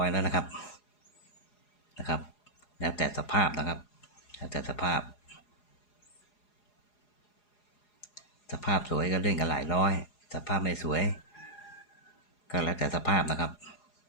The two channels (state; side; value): late; right; 4.8 ms